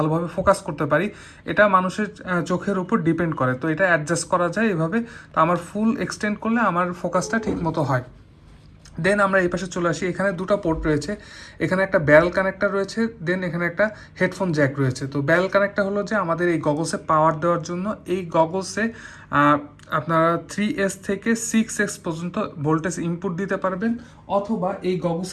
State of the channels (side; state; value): both; identical; correlation 1.00